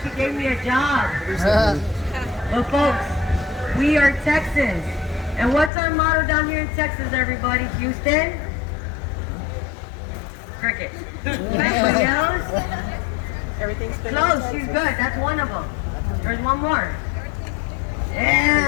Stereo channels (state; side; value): drops out; right; at 5.7 s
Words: gave me a job. But folks, we are Texans. And what's our motto down here in Texas, everybody? Houston? Cricket. Anybody else? Everything's been Close, she's good. That's one of them. There's one more.